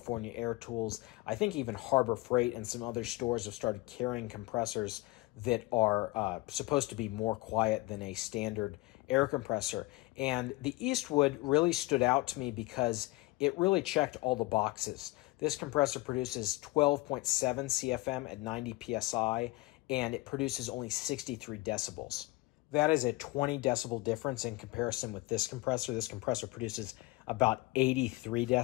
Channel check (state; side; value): quieter; right; 21.7 dB